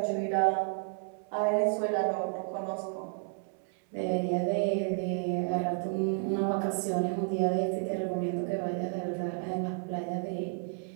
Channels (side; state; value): left; silent; 57 dB below the other